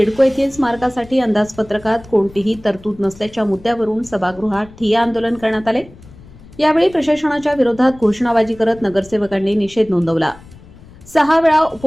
येथील स्मारकासाठी अंदाजपत्रकात कोणतीही तरतूद नसल्याच्या मुद्द्यावरून सभागृहात ठिय्या आंदोलन करण्यात आले. यावेळी प्रशासनाच्या विरोधात घोषणाबाजी करत नगरसेवकांनी निषेध नोंदवला. 6 वेळा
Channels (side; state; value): left; noise; rumble, 22 dB below the sound